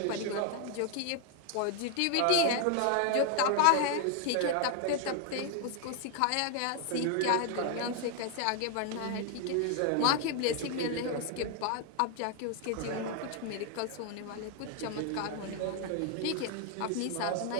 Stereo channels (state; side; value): different; both; correlation 0.00